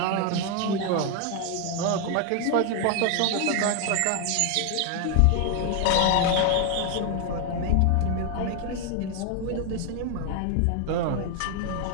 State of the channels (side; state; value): both; different; correlation 0.01